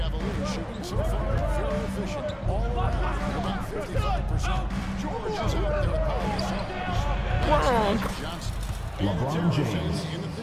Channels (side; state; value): both; identical; correlation 1.00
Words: shooting so far very efficient. All around, about 55%. George is out there at Paul Johnson. LeBron James. In the